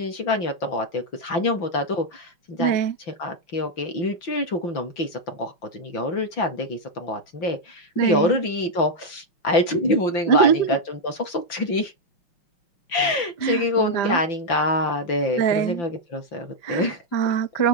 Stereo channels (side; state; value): right; late; 5.9 ms